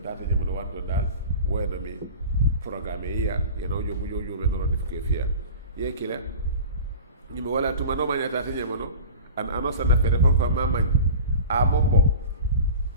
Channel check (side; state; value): both; inverted; correlation -0.36